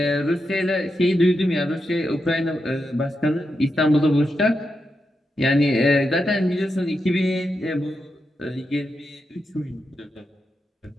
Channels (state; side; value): normal; both; correlation 0.86